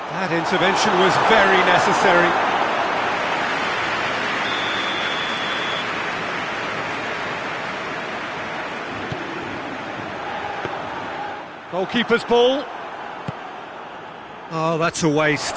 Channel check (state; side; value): identical; both; correlation 1.00